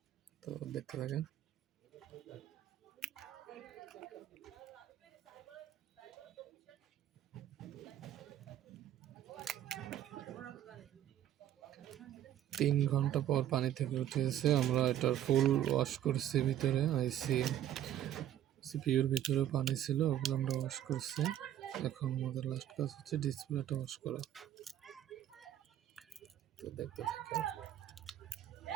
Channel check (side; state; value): left; quieter; 11.5 dB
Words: তো দেখতে থাকেন। তিন ঘন্টা পর পানি থেকে উঠেছে। আমরা এটার ফুল ওয়াশ করছি, ভিতরে আইসি সিপিইউর ভিতরে পানি ছিল, ওগুলো আমরা ওয়াশ করছি। এখন আমাদের লাস্ট কাজ হচ্ছে ডিসপ্লেটা ওয়াশ করা। তো দেখতে থাকেন।